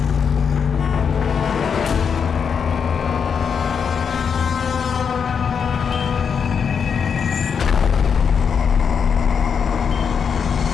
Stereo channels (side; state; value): right; quieter; 6.7 dB